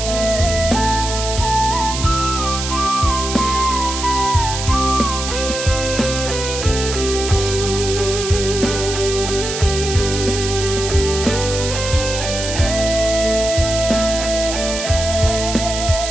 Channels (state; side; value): noise; right; hiss, 5 dB below the sound